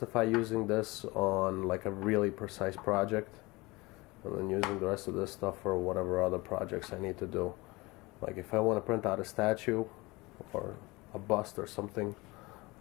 using this on like a really precise project, and then using the rest of this stuff for whatever other projects I need to do. Like if I want to print out a statue or a bust or something,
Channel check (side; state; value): right; quieter; 23.1 dB